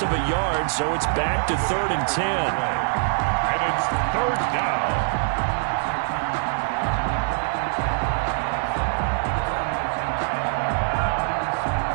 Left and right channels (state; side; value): silent; left; 63 dB below the other